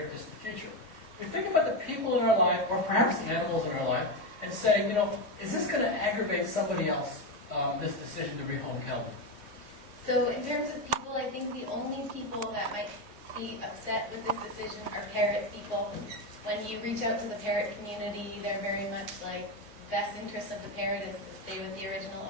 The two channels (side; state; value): left; late; 3.0 ms